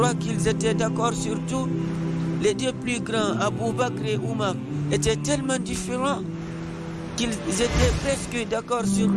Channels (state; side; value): identical; both; correlation 1.00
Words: qu'ils étaient d'accord sur tout? Les deux plus grands, Abu Bakr et Omar, étaient tellement différents qu'ils étaient presque d'accord sur